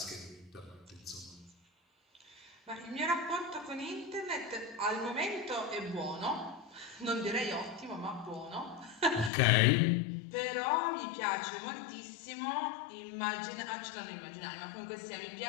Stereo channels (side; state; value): right; drops out; at 9.3 s